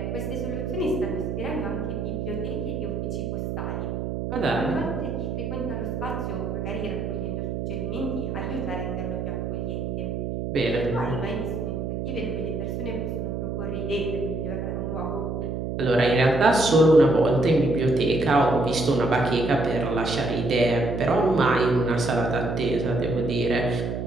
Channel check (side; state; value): right; noise; hum, 3 dB below the sound